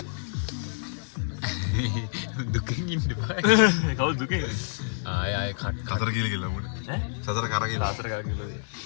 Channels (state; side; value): silent; right; digital silence